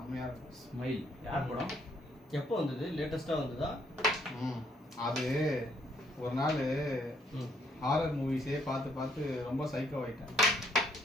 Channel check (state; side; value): normal; both; correlation 0.69